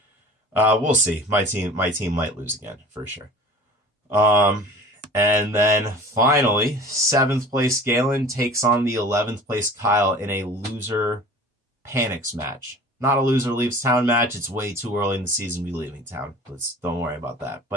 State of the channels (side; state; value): both; normal; correlation 0.42